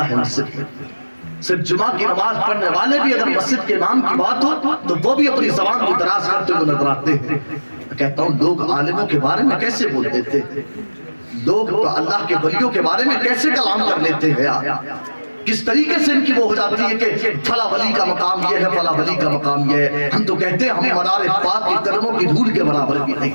है मस्जिद में। सिर्फ जुमा की नमाज पढ़ने वाले भी अगर मस्जिद के इमाम की बात हो तो वो भी अपनी जबान को दराज करते हुए नजर आते हैं। कहता हूँ लोग आलिमों के बारे में कैसे बोल देते हैं, लोग तो अल्लाह के वलियों के बारे में कैसे कलाम कर लेते हैं यार। किस तरीके से इनकी वो हो जाती है कि फला वली का मकाम ये है, फला वली का मकाम ये है। हम तो कहते हैं हम मनारे पाक के कदमों की धूल के बराबर भी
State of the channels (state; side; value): inverted; both; correlation -1.00